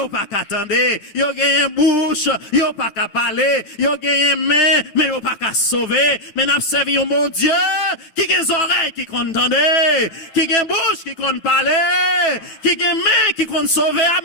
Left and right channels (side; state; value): right; late; 9.1 ms